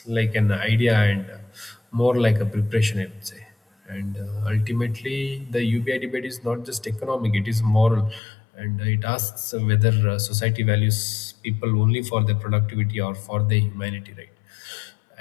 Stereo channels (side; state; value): right; drops out; at 8.2 s